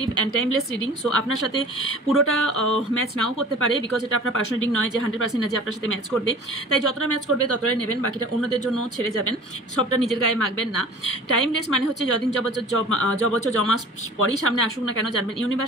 and timeless reading. So আপনার সাথে পুরোটা ম্যাচ নাও করতে পারে, বিকজ এটা আপনার পার্সোনাল রিডিং নয় যে 100% যে আপনার সাথে ম্যাচ করবে। তাই যতটা ম্যাচ করবে ততটাই নেবেন, বাকিটা অন্যদের জন্য ছেড়ে যাবেন, সবটা নিজের গায়ে মাখবেন না। টাইমলেস মানে হচ্ছে যদিন যবছর জমা পরেই সামনে আসুক না কেন, জানবেন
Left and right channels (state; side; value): normal; both; correlation 0.43